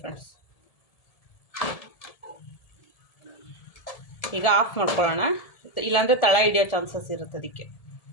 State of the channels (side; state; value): right; late; 1.7 ms